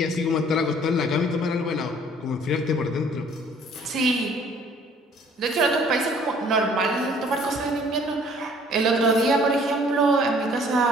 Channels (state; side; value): normal; both; correlation 0.56